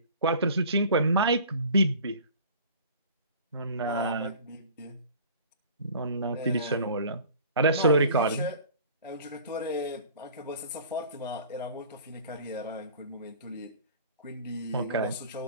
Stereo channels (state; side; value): inverted; both; correlation -0.45